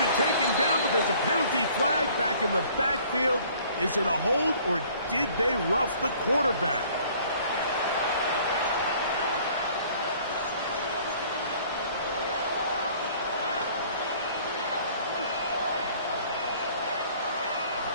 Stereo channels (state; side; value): inverted; both; correlation -0.55